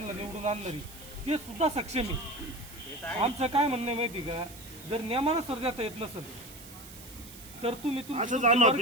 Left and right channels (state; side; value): noise; right; hiss, 17 dB below the sound